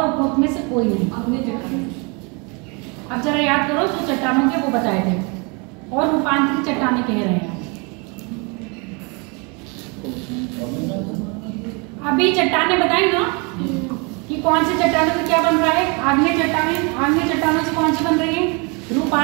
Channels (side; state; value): left; quieter; 31.6 dB